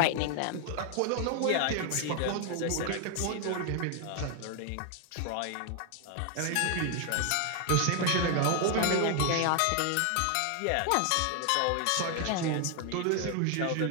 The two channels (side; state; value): both; different; correlation 0.00